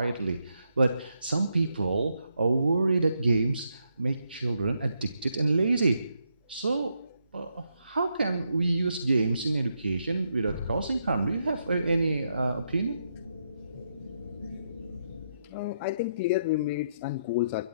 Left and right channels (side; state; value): both; inverted; correlation -0.79